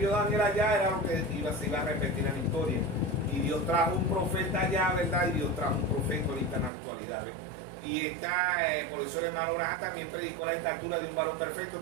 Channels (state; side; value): drops out; left; at 6.7 s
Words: Daniel allá era lo que se iba a repetir en la historia. Y Dios trajo un profeta allá, ¿verdad? Y Dios trajo un profeta ahorita en la actualidad, ¿ves? Y por eso el hermano Braja también predicó la estatura de un varón perfecto,